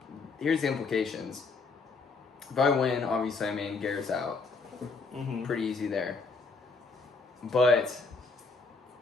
implications. If I win, obviously, I mean Garrett's out. Mm-hmm. Pretty easy there. But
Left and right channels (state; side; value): quieter; right; 4.2 dB